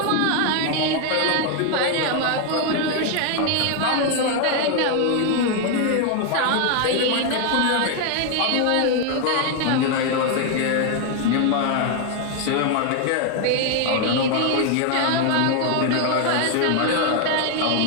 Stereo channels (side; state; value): both; different; correlation 0.01